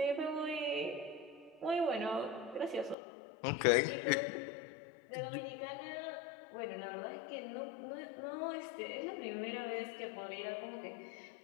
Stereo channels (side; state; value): right; drops out; at 3.0 s